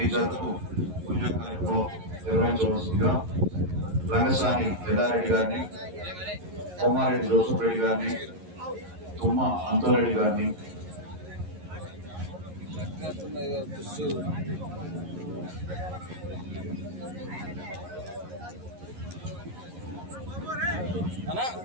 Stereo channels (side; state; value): left; late; 11 ms